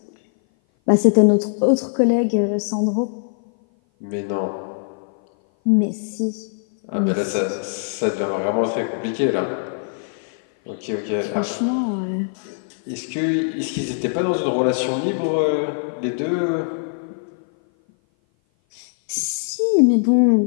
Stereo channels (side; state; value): right; silent; 57 dB below the other